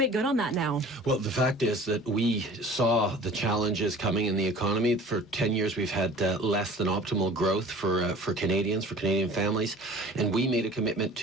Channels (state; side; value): normal; both; correlation 0.45